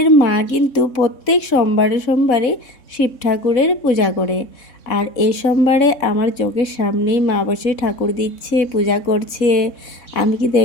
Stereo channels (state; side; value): late; right; 3.6 ms